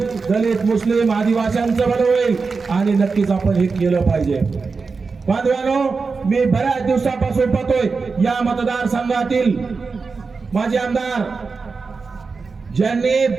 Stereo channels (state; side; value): quieter; left; 4.6 dB